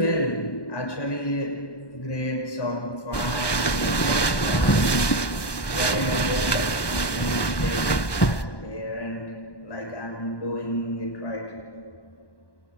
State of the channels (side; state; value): right; late; 1.2 ms